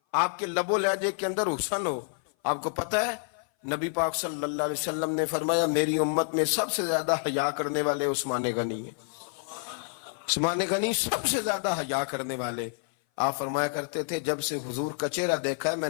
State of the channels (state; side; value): silent; right; 57 dB below the other